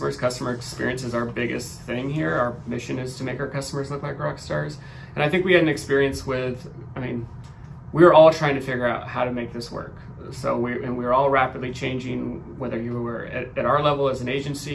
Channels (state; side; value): identical; both; correlation 1.00